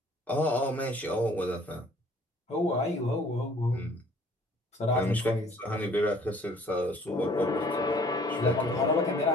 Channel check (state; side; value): normal; both; correlation 0.56